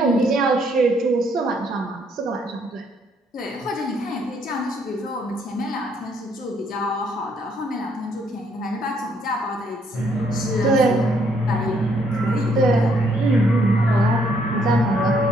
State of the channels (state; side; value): normal; both; correlation 0.69